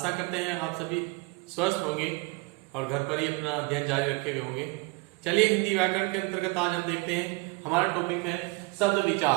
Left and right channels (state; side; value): quieter; left; 26.3 dB